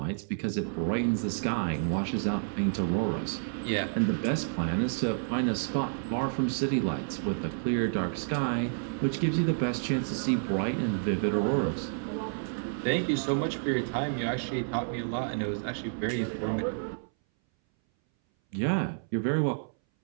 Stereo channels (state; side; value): silent; left; 58 dB below the other